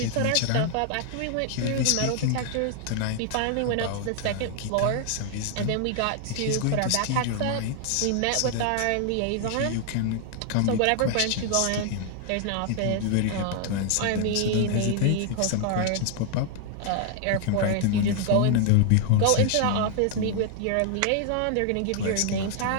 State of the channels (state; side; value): different; both; correlation 0.00